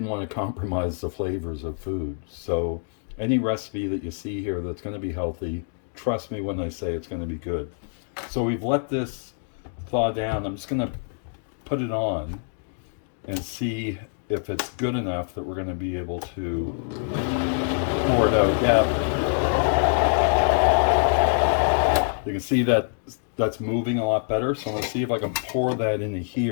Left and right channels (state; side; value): silent; right; digital silence